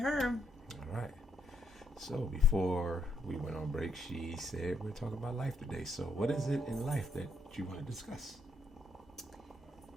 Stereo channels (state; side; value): normal; both; correlation 0.74